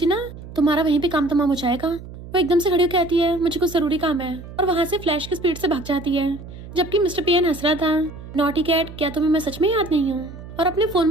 ना तुम्हारा वहीं पे काम तमाम हो जाएगा। वो एकदम से खड़ी होकर कहती है, मुझे कुछ जरूरी काम है, और वहाँ से फ्लैश की स्पीड से भाग जाती है। जबकि मिस्टर पेयन हंस रहा था, नॉटी कैट क्या तुम्हें मैं सच में याद नहीं हूँ? और अपने फोन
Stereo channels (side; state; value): right; noise; hum, 14 dB below the sound